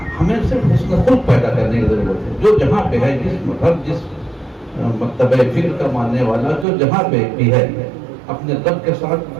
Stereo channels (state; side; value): drops out; left; at 6.7 s